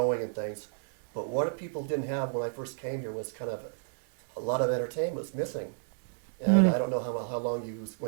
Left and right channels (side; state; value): left; silent; digital silence